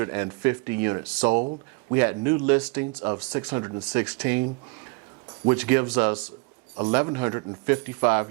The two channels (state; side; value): quieter; left; 29.4 dB